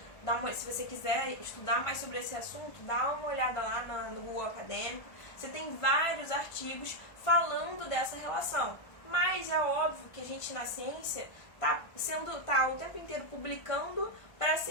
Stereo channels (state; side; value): late; right; 1.4 ms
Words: se você quiser estudar mais sobre esse assunto, dá uma olhada lá no Google Acadêmico. Você tem vários artigos falando dessa relação. Mas é óbvio que a gente na ciência tá o tempo inteiro publicando para